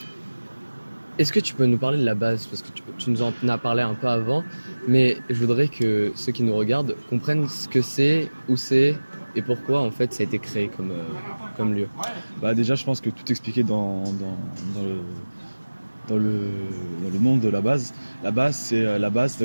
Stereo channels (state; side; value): inverted; both; correlation -1.00